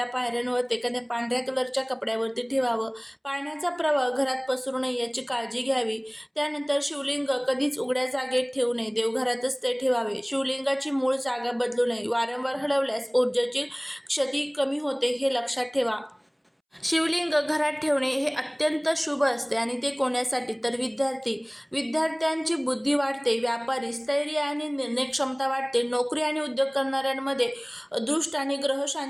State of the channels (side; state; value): both; identical; correlation 1.00